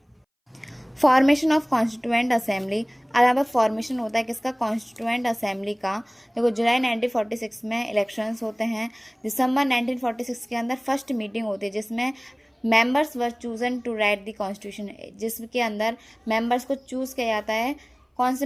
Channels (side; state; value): both; identical; correlation 1.00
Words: Formation of constituent assembly. अब यहाँ पर फॉर्मेशन होता है किसका, कॉन्स्टिट्यूएंट असेंबली का। देखो जुलाई 1946 में इलेक्शंस होते हैं। दिसंबर 1946 के अंदर फर्स्ट मीटिंग होती है, जिसमें members were chosen to write the constitution, जिसके अंदर मेंबर्स को चूज़ किया जाता है। कौन से